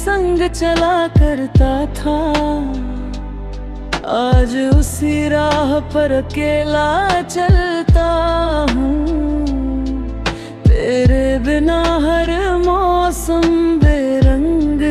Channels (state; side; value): identical; both; correlation 1.00